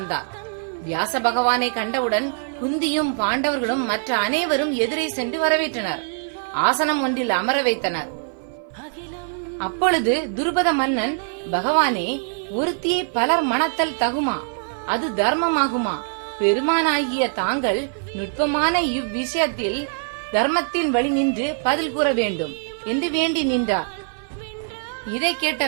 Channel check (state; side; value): silent; left; 56 dB below the other